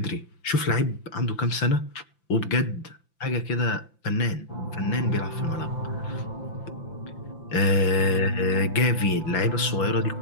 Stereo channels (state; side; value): late; right; 5.9 ms